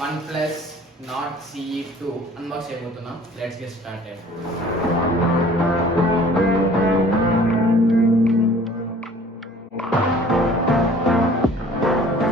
OnePlus Nord CE2 unbox చేయబోతున్నాం. Let's get started.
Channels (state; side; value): normal; both; correlation 0.51